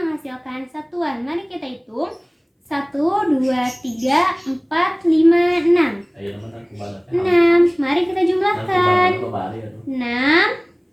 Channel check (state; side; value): identical; both; correlation 1.00